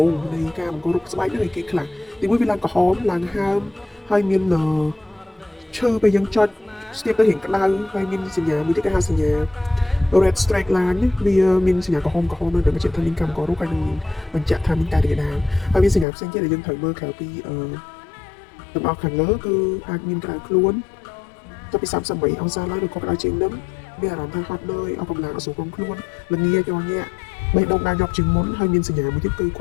ូងនៃការបង្ករោគស្បែកហ្នឹងគេខ្លះទីមួយវាឡើងក្រហមឡើងហើមហើយមានឈើពេលយើងចុចស្ទាបទៅរៀងក្តៅហើយមានសញ្ញាមួយទៀតគេហៅសញ្ញា red straight line វាមានសញ្ញាក្រហមនៅបញ្ជាក់ថាមានកម្មកររោគហើយនឹងបញ្ជាក់ថាមានការរាលដាលហើយមានសញ្ញាផ្សេងទៀតដែលយើងត្រូវមើលក្រៅពីទាំងអស់ខាងលើគឺអាចមានក្តៅខ្លួនទៅពី38អង្សាឡើងឬក៏ក្តៅជាងនឹងមានអារម្មណ៍ថាហត់នឿយអស់កម្លាំងអត់ស្រួលក្នុងខ្លួនល្ងាចញាក់បេះដូងដើរញាប់ជាងមុនហើយមានសញ្ញាមួយទៀតគឺគ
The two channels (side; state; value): right; drops out; at 16.1 s